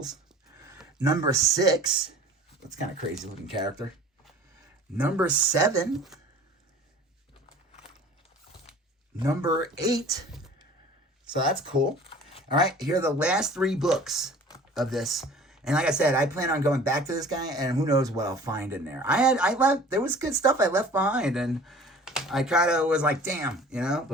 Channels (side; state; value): both; normal; correlation 0.45